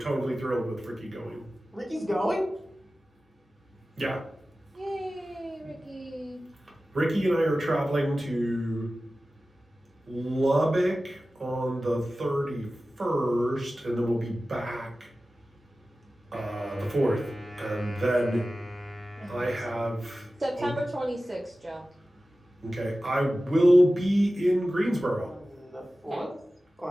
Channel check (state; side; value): normal; both; correlation 0.95